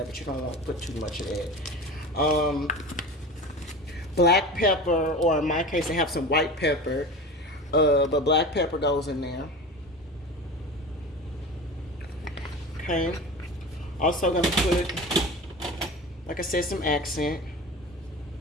but you don't want to put too much of that. Black pepper, or in my case, I have some white pepper, but black pepper goes in there. Okay. Also gonna put, like I said, some accent.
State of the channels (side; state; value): both; normal; correlation 0.32